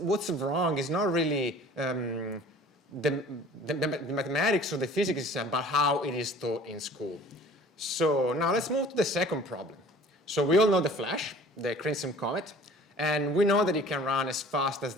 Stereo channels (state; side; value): normal; both; correlation 0.48